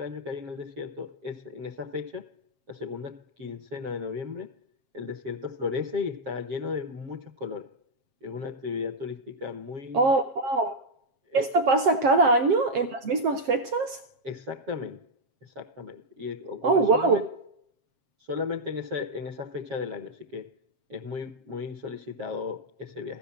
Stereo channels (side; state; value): left; late; 7.5 ms